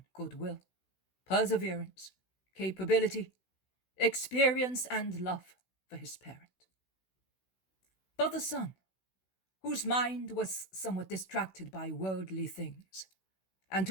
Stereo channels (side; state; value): right; late; 16 ms